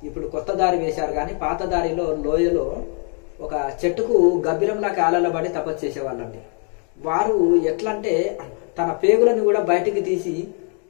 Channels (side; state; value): right; quieter; 39.8 dB